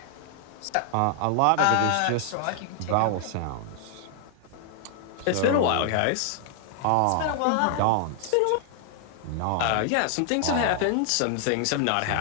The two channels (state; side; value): different; both; correlation 0.00